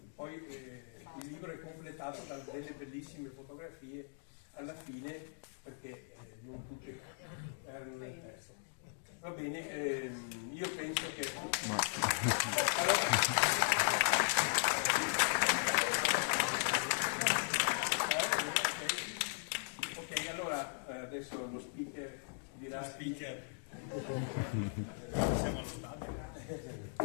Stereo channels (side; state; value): right; silent; digital silence